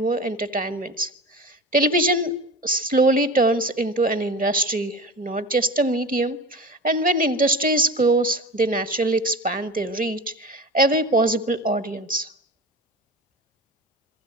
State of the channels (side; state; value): both; normal; correlation 0.32